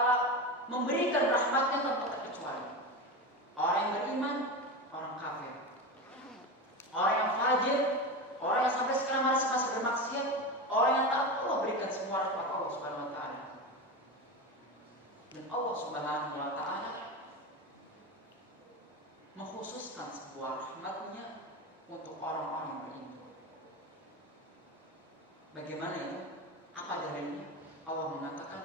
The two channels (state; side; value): normal; both; correlation 0.22